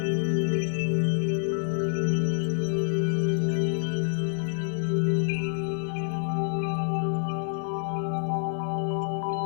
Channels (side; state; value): right; silent; 60 dB below the other